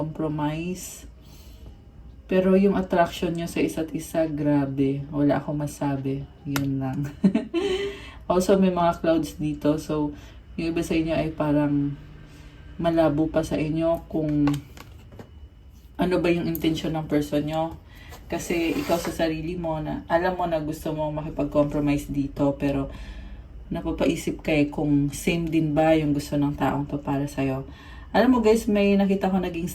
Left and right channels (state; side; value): identical; both; correlation 1.00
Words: Pero yung attraction nyo sa isa't isa, grabe. Wala akong masabi. Yun lang. Also, may mga clouds dito. So, yung iba sa inyo ay parang malabo pa sa inyo kung ano ba yung intention ng person nyo. Kasi ikaw sa sarili mo, na alam mo na gusto mo makipag-compromise dito, pero napapaisip ka kung same din ba yung gusto ng taong to para sa'yo. Alam mo guys, may nakita ko naging